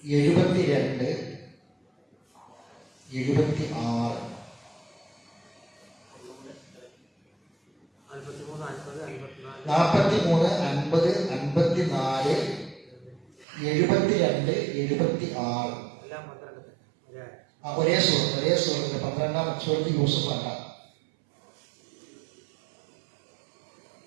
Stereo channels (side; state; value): left; drops out; at 13.5 s